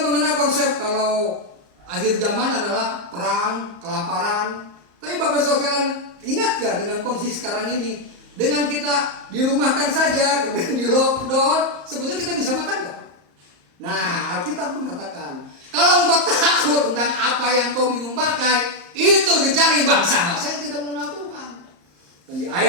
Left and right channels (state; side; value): late; left; 34 ms